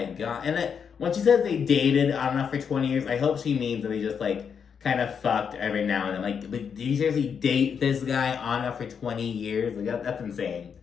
god. And then when she says they dated on and off for 20 years, I hope she means that they just, like, kind of fucked every now and then. Like, did you seriously date this guy on and off for 20 years? Like, that's insane.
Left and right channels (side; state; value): right; quieter; 6.9 dB